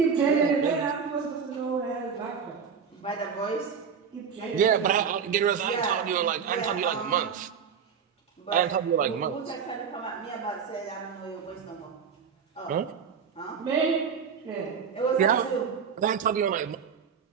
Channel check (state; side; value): quieter; left; 6.7 dB